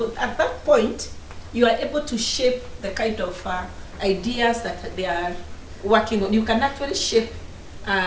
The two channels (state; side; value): identical; both; correlation 1.00